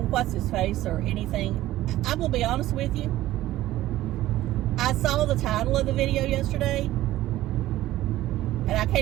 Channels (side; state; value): left; quieter; 15.2 dB